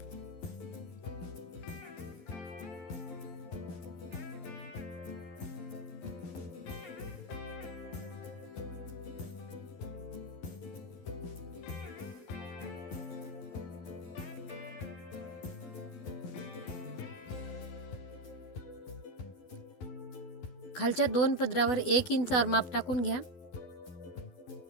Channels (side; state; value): right; late; 11 ms